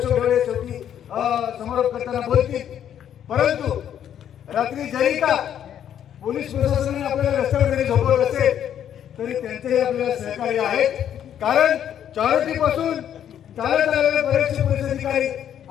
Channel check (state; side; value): quieter; right; 9.8 dB